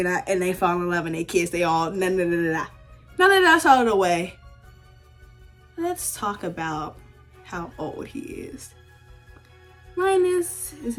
and they fall in love and they kiss. They all, Now that that's out of the way, let's talk about how old he is. Linus is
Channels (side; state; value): both; identical; correlation 1.00